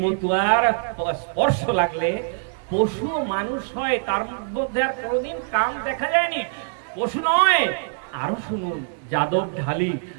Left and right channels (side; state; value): left; silent; digital silence